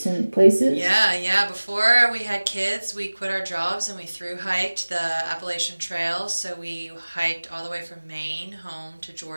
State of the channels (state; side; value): inverted; both; correlation -1.00